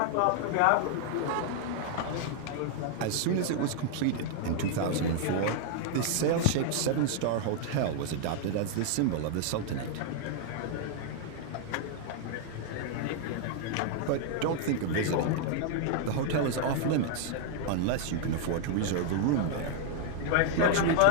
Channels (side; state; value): both; different; correlation 0.00